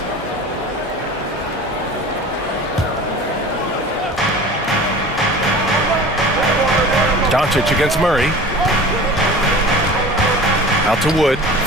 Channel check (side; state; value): both; normal; correlation 0.39